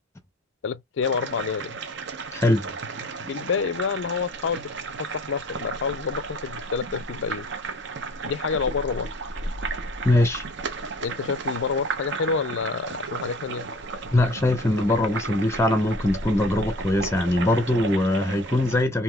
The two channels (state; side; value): normal; both; correlation 0.49